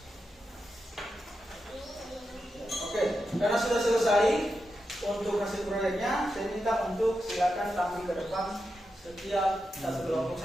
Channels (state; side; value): normal; both; correlation 0.88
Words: oke, karena sudah selesai untuk hasil proyeknya, saya minta untuk silakan tampil ke depan setiap satu kelompok